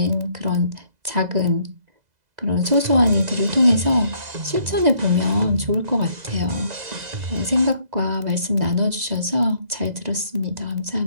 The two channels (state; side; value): late; left; 2.0 ms